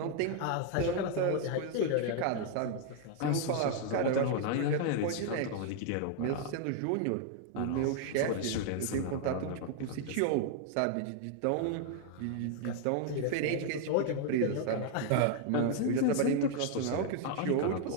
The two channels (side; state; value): both; different; correlation 0.00